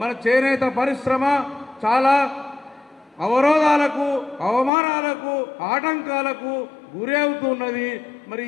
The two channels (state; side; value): drops out; right; at 4.7 s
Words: చేనేత పరిశ్రమ చాలా అవరోధాలకు, అవమానాలకు, ఆటంకాలకు గురి అవుతున్నది. మరి